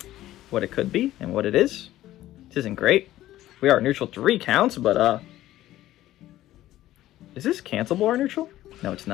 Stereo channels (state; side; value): quieter; right; 14.5 dB